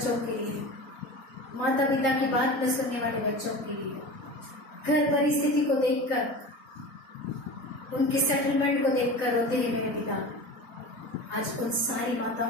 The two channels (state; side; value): late; right; 4.2 ms